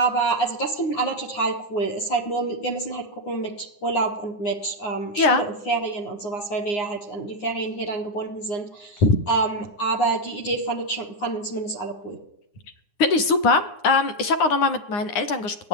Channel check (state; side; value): late; right; 9.7 ms